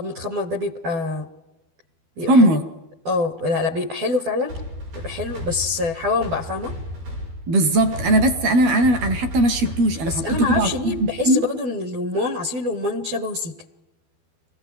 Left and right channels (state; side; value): late; left; 12 ms